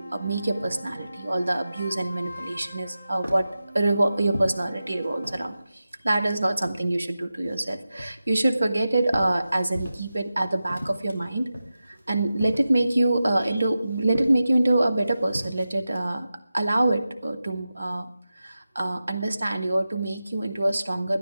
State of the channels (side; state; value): both; inverted; correlation -0.93